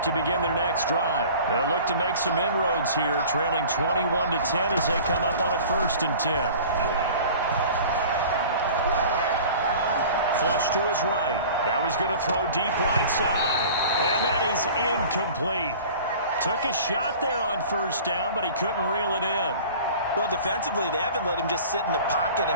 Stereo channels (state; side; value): inverted; both; correlation -0.43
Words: to begin their next drive. They'll look to make some inroads here, trailing 21-10 as they come up on a 1st and 10. flush to his right. Now he's going to throw deep right side. And that is incomplete. Took a shot there on first down, but he couldn't reel it in. Well, defensively, they haven't let him just sit in the pocket